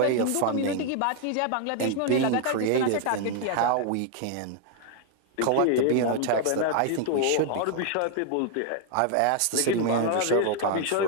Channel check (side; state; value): both; different; correlation 0.00